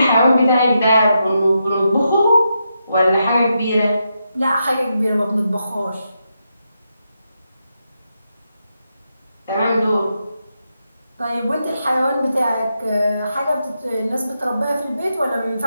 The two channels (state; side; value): inverted; both; correlation -0.84